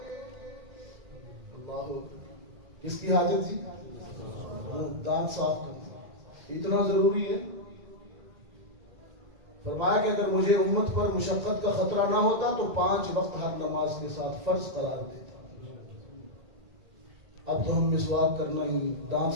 اللہ، کس کی حاجت تھی؟ دانت صاف کرنا اتنا ضروری ہے. فرمایا کہ اگر مجھے امت پر مشقت کا خطرہ نہ ہوتا تو 5 وقت ہر نماز کے ساتھ فرض قرار دیتا. اب تو ہم مسواک کرنا ہی،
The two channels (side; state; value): left; late; 1.9 ms